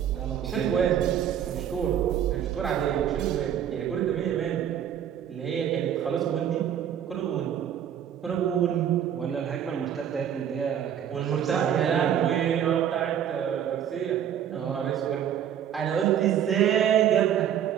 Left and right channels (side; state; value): left; quieter; 9.6 dB